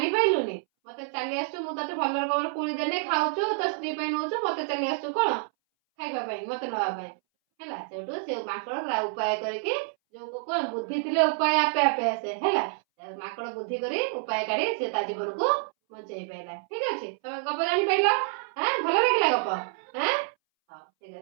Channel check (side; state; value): left; silent; 59 dB below the other